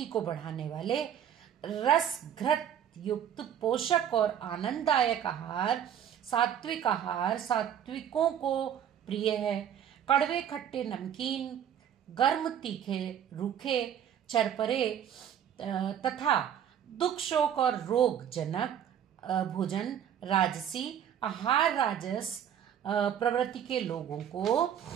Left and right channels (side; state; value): left; quieter; 9.4 dB